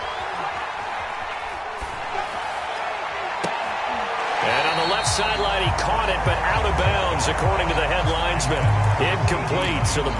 And on the left sideline, he caught it, but out of bounds, according to the head linesman. Incomplete, so the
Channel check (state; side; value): identical; both; correlation 1.00